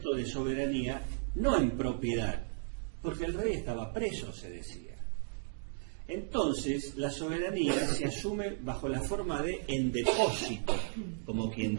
de soberanía no en propiedad, porque el rey estaba preso, se decía. Entonces, la soberanía se asume bajo la forma de en depósito, como quien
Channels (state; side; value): silent; left; digital silence